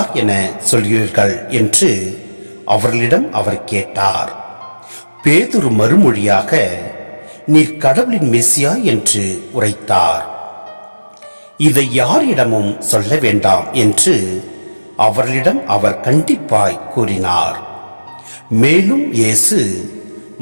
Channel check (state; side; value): inverted; both; correlation -1.00